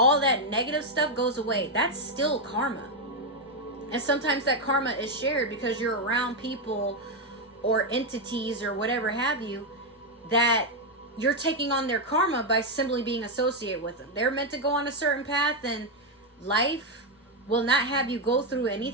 that negative stuff goes away. That's still karma. And sometimes that karma is shared because you're around people or entities or whatever have you that you're taking on their karma by simply being associated with them. They're meant to go on a certain path, and life will not have you go through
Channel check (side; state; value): both; normal; correlation 0.03